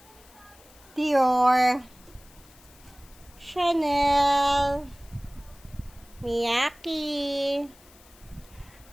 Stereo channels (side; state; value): left; noise; hiss, 25 dB below the sound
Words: Dior. Chanel. Miyaki.